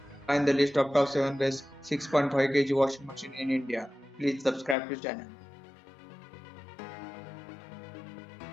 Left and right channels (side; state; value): right; drops out; at 4.8 s